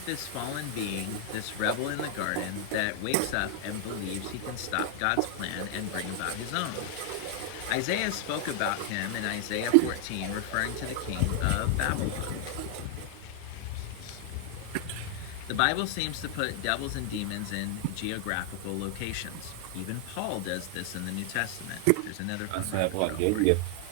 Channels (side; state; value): both; different; correlation 0.00